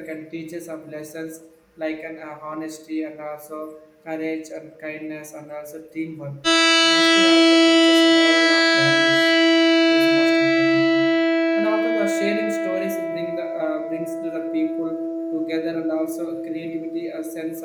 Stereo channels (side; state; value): both; identical; correlation 1.00